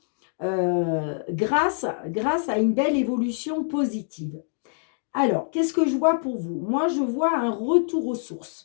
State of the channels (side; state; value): right; silent; digital silence